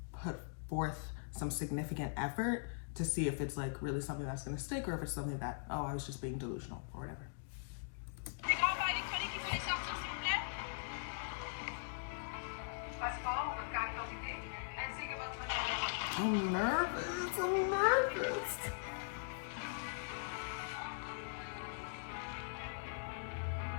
put forth some significant effort to see if it's like really something that's gonna stick, or if it's something that, oh, I was just being delusional or whatever. I'm nervous, I'm nervous.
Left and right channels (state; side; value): silent; right; digital silence